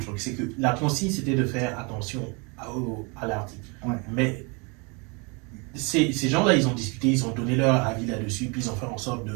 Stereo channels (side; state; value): left; quieter; 31.0 dB